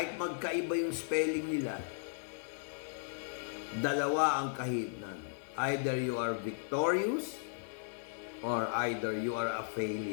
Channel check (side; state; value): right; silent; digital silence